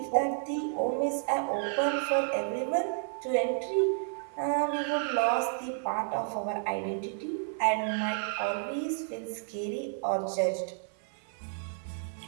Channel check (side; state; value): left; silent; digital silence